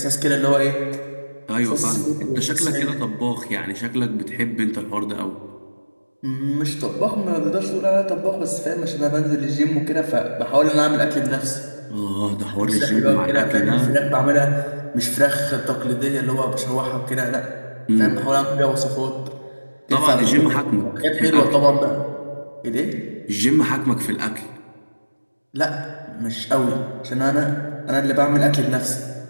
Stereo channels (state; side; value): inverted; both; correlation -1.00